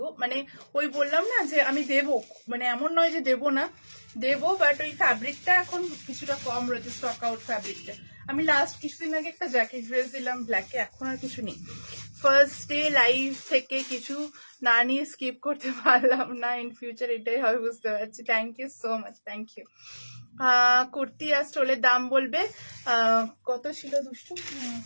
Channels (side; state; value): both; inverted; correlation -1.00